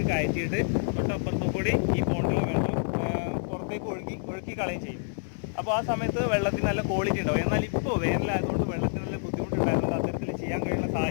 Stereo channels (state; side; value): silent; right; digital silence